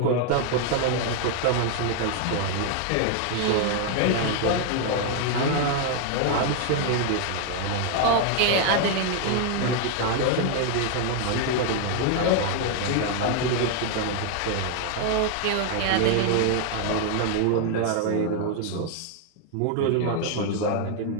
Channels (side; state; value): both; different; correlation 0.00